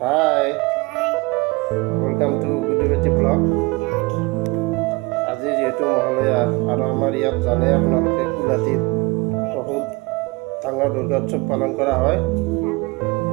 welcome to Gudiwati Vlog. আজি যেহেতু মহালয়া আৰু আমাৰ ইয়াত জানে আপোনালোকে কুলাটিত বহুত ডাঙৰ দুৰ্গা উৎসৱ পালন কৰা হয়।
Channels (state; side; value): quieter; left; 25.0 dB